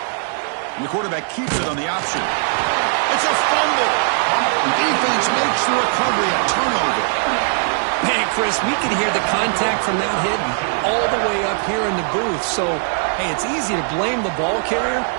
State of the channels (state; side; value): silent; left; 60 dB below the other